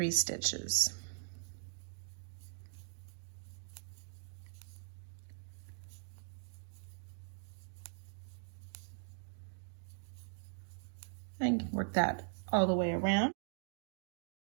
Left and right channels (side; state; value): left; silent; digital silence